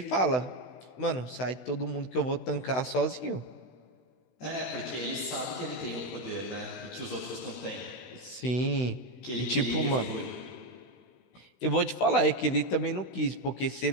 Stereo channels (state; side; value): late; right; 16 ms